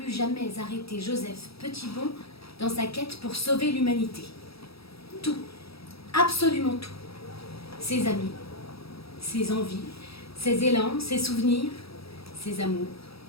jamais arrêter Joseph Petitbon dans sa quête pour sauver l'humanité. Tout, absolument tout. Ses amis, ses envies, ses élans, ses souvenirs, ses amours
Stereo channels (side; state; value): right; late; 0.77 ms